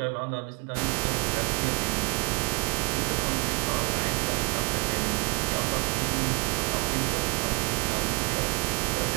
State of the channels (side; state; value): left; quieter; 29.3 dB